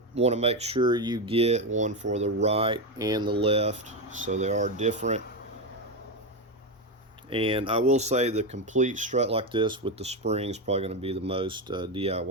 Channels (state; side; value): normal; both; correlation 0.11